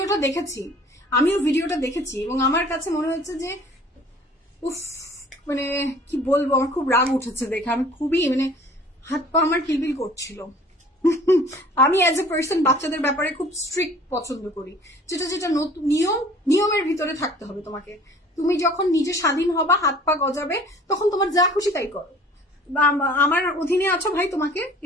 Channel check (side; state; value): both; normal; correlation 0.50